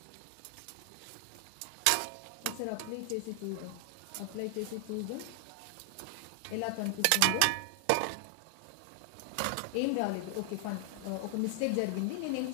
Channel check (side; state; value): both; different; correlation 0.00